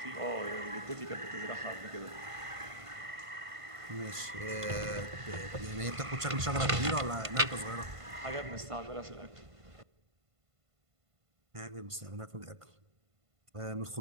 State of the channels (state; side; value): late; left; 1.5 ms